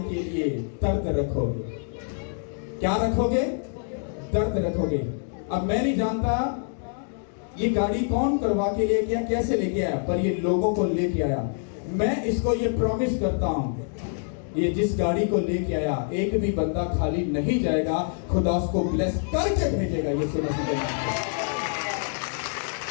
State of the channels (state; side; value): silent; right; 61 dB below the other